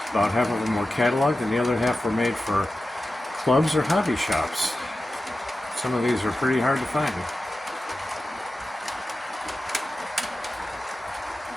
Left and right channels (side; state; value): both; normal; correlation 0.93